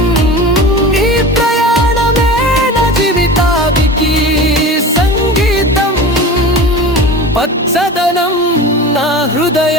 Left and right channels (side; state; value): both; normal; correlation 0.33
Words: ఈ ప్రయాణమే నా జీవితానికి సంగీతం, పచ్చదనం నా